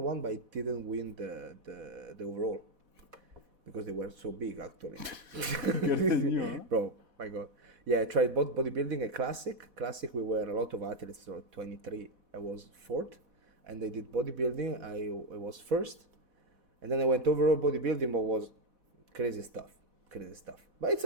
one, but I didn't win the overall because they were so big actually. Bro, my god. Yeah, I tried both bodybuilding and classic. Classic, we were a lot of athletes, so 23. I was fourth, and they did bodybuilding. I was first, and then I went overall bodybuilding, but was crazy stuff. But it's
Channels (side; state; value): left; late; 4.1 ms